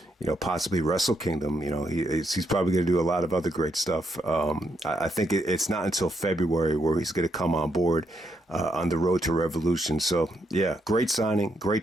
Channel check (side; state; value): both; normal; correlation 0.78